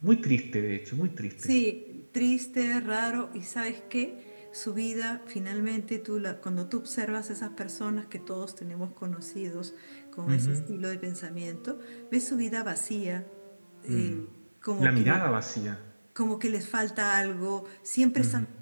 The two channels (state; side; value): inverted; both; correlation -1.00